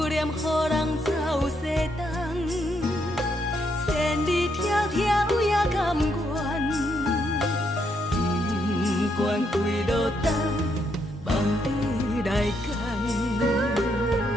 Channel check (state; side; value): normal; both; correlation 0.76